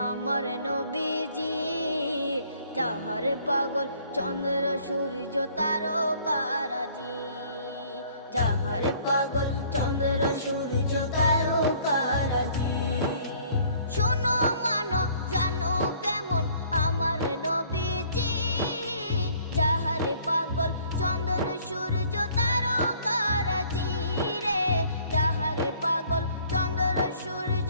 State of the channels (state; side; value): inverted; both; correlation -0.57